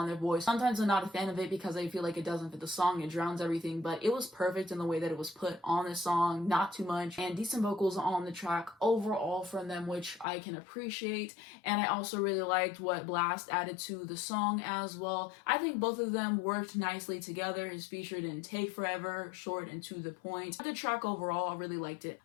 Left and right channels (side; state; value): right; drops out; at 10.2 s